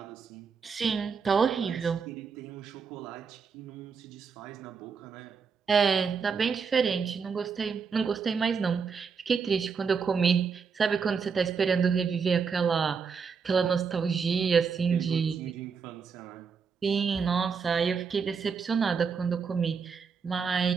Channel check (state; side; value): quieter; left; 5.8 dB